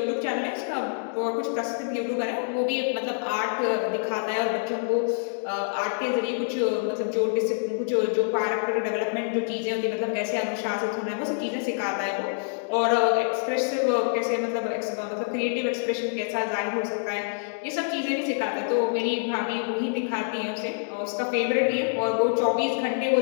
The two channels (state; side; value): silent; right; digital silence